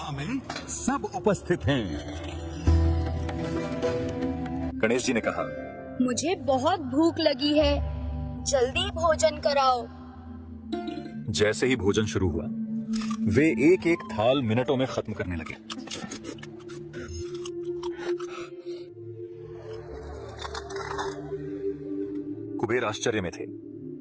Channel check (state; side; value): identical; both; correlation 1.00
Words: में सब उपस्थित हैं। गणेश जी ने कहा, मुझे बहुत भूख लगी है, जल्दी भोजन कराओ। जैसे ही भोजन शुरू हुआ, वे एक एक थाल मिनटों में खत्म करने लगे। कुबेर आश्चर्य में थे,